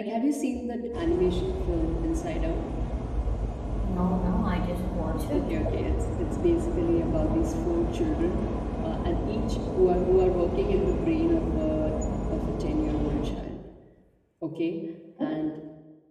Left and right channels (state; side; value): identical; both; correlation 1.00